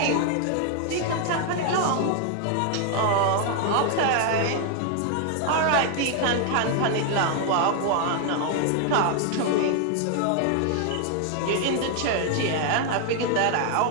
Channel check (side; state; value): both; different; correlation 0.00